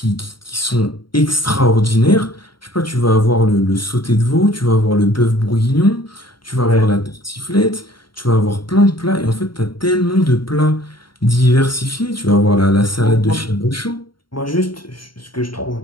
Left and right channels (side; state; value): right; late; 0.73 ms